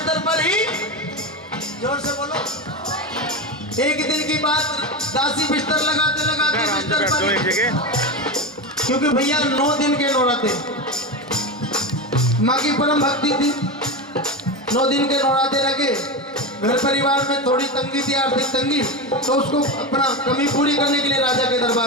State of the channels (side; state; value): both; normal; correlation 0.18